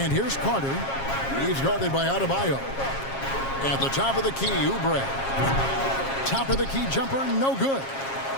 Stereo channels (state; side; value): late; right; 7.4 ms